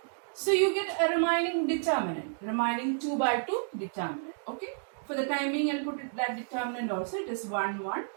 So you get a remaining determinant, remaining 2 by 2 determinant. Okay. For the time being, I'll put it that determinant also. It is 1, 1,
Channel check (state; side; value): silent; left; digital silence